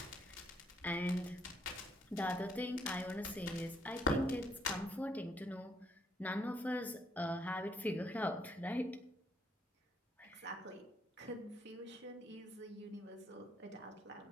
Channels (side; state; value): both; normal; correlation 0.70